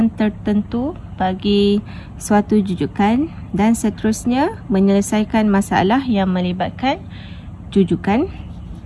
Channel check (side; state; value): both; identical; correlation 1.00